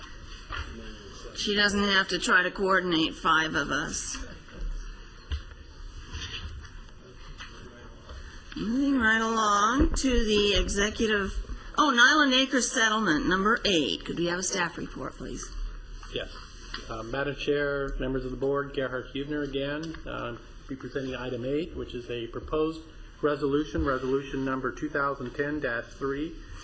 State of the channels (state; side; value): identical; both; correlation 1.00